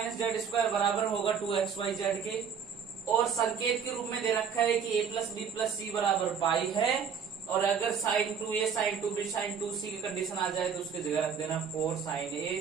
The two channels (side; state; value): left; quieter; 6.8 dB